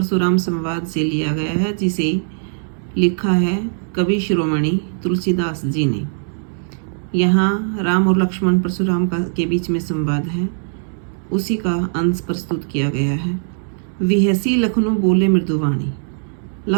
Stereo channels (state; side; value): silent; left; digital silence